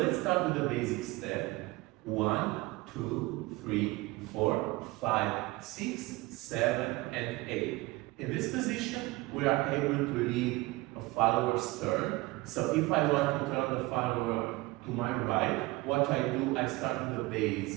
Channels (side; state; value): left; quieter; 21.4 dB